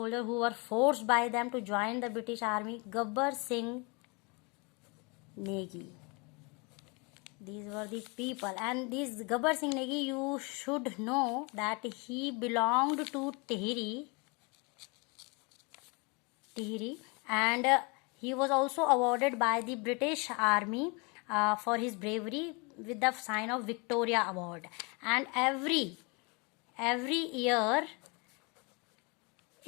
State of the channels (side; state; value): right; quieter; 30.3 dB